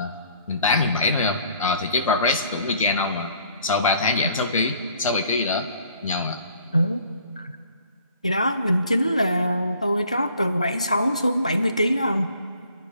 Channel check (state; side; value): inverted; both; correlation -0.57